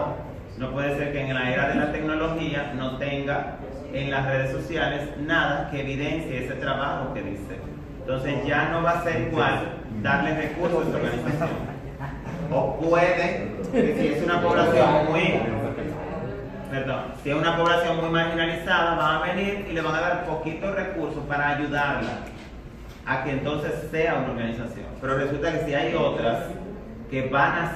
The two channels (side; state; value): both; identical; correlation 1.00